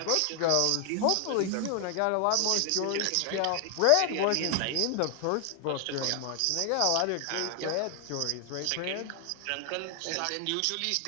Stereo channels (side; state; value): both; different; correlation 0.00